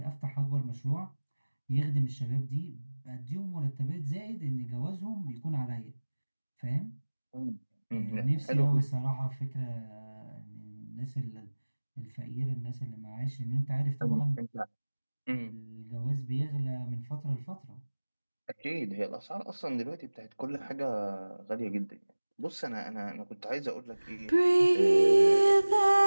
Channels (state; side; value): inverted; both; correlation -1.00